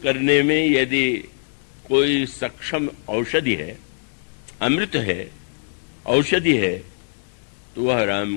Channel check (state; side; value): silent; right; digital silence